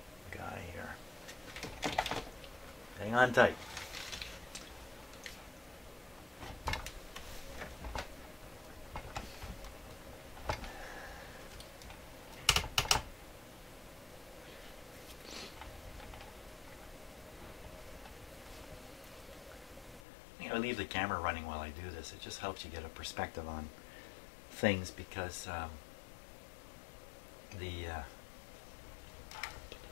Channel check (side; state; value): right; drops out; at 20.1 s